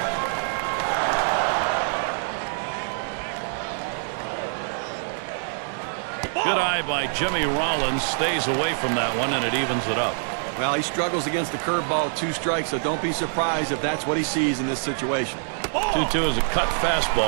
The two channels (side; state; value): left; silent; digital silence